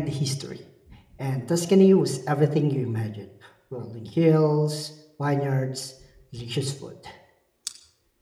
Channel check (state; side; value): identical; both; correlation 1.00